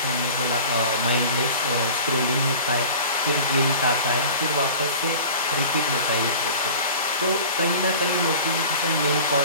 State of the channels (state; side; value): inverted; both; correlation -0.40